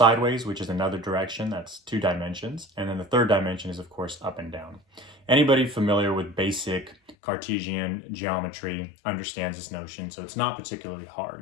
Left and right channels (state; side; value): drops out; right; at 7.2 s